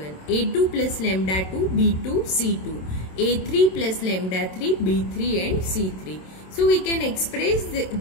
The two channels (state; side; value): late; right; 27 ms